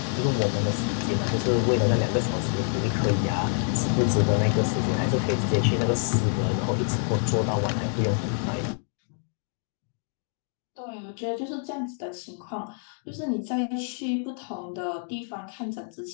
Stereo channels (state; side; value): silent; right; 57 dB below the other